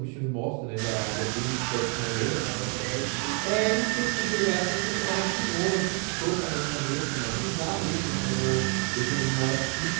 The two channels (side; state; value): left; quieter; 38.3 dB